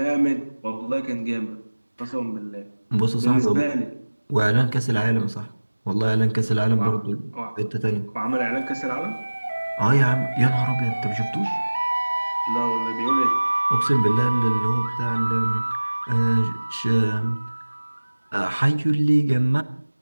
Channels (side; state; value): both; inverted; correlation -1.00